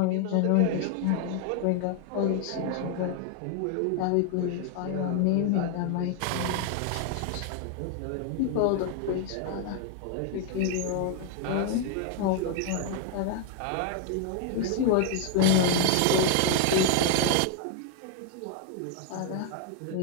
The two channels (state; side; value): different; both; correlation 0.00